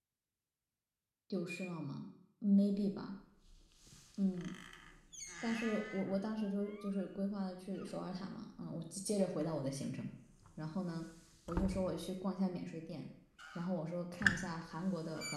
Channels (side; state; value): both; identical; correlation 1.00